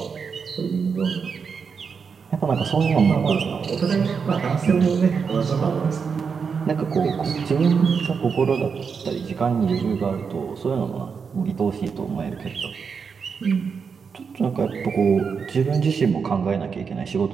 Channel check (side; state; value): left; quieter; 5.9 dB